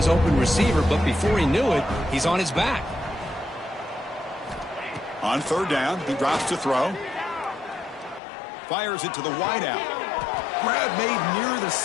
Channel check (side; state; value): right; drops out; at 8.2 s